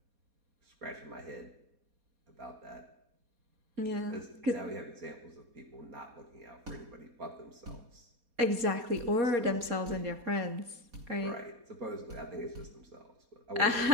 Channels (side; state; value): left; late; 4.2 ms